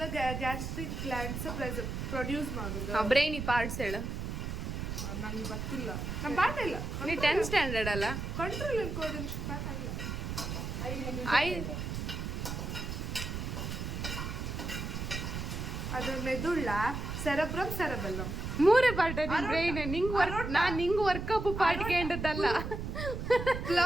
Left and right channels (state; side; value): noise; right; rumble, 4 dB below the sound